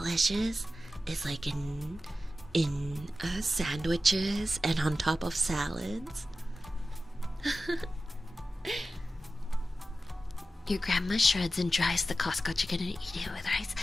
is like in sandwiches and on top of salads. Your grandma shreds and dries the Costco chicken and eat it with rice.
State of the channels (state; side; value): normal; both; correlation 0.94